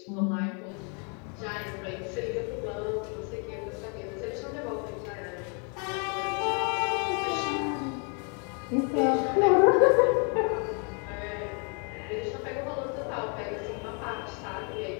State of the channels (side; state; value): right; quieter; 37.1 dB